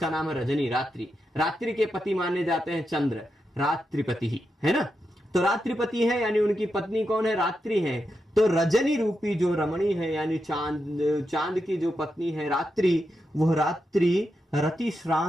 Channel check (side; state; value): both; normal; correlation 0.86